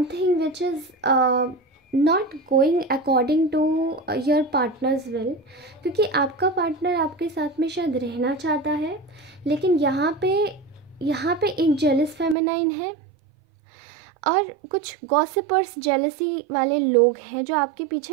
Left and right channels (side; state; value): left; drops out; at 12.4 s